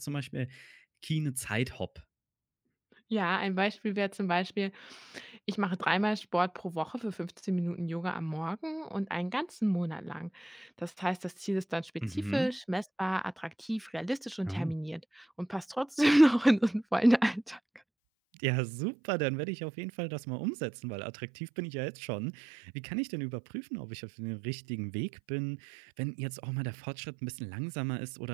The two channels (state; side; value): drops out; left; at 17.8 s